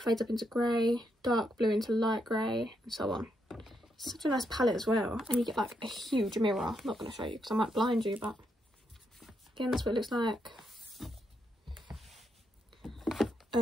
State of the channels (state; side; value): normal; both; correlation 0.79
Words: fades up into grey, dark blue into light grey, and so on. It's such a nice palette as well, and you get like a huge mirror. I'm not going to show you because I might blind you, but again, that's what it looks like.